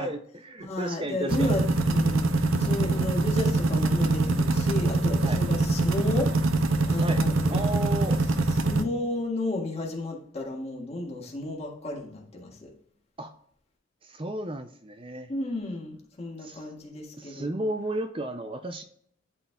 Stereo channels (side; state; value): both; normal; correlation 0.75